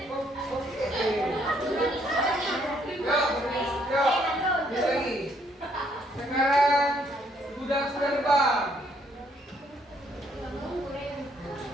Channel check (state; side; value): normal; both; correlation 0.68